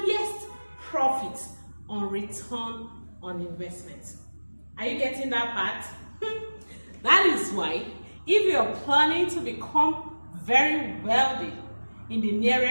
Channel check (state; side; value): inverted; both; correlation -1.00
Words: profit on return on investment. Are you getting that part? That is why, if you're planning to become very wealthy in the